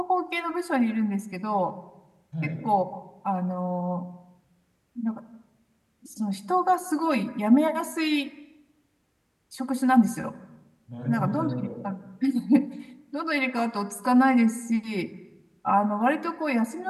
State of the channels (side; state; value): both; identical; correlation 1.00